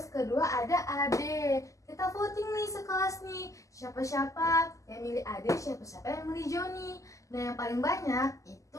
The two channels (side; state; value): right; late; 0.16 ms